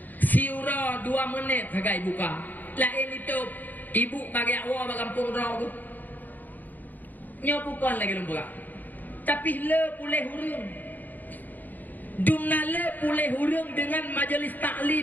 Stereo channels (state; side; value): late; right; 0.086 ms